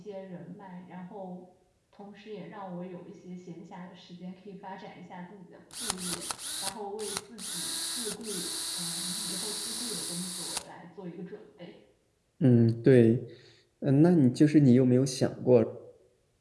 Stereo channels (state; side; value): identical; both; correlation 1.00